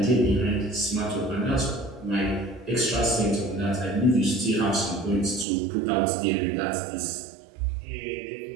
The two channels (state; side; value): drops out; left; at 5.5 s